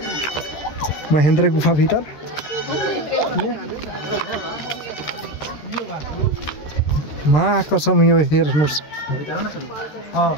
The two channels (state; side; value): late; right; 13 ms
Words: महेंद्र गुफा भीतर। माँ कसम यो हेर्नुस्